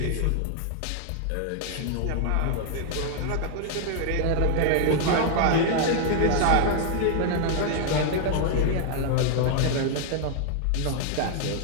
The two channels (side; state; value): both; different; correlation 0.00